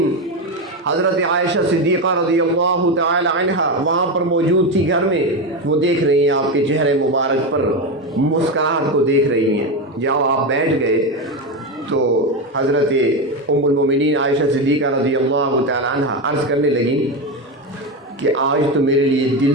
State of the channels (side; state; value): both; normal; correlation 0.14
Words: حضرت عائشہ صدیقہ رضی اللہ تعالی عنہا وہاں پر موجود تھی گھر میں، وہ دیکھ رہی ہیں آپ کے چہرے مبارک پر مسکراہٹ کو دیکھ رہی ہیں، جاؤ آپ بیٹھ گئے تو حضرت ام المومنین عائشہ صدیقہ رضی اللہ تعالی عنہا عرض کرنے لگی کہ آج تو میرے لیے